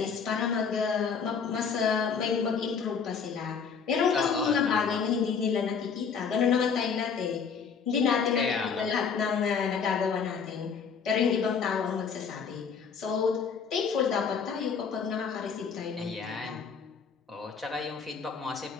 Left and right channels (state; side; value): quieter; right; 6.1 dB